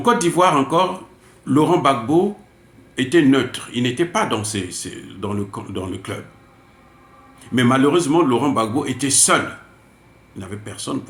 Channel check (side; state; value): both; identical; correlation 1.00